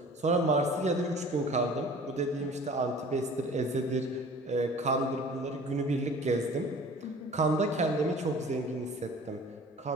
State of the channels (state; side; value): normal; both; correlation 0.45